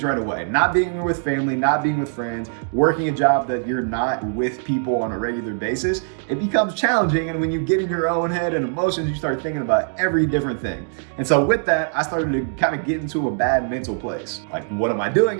right away, not being with family, not being with friends, working a job that you're not with people on a regular basis, it becomes challenging. And when you get in your own head and emotions, you start thinking about every different thing. And so with that, I started to kind of get into a bad mental place. Like, what am I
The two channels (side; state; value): left; silent; digital silence